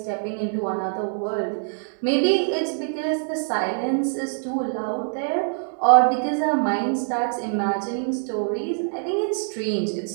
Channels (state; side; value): silent; left; digital silence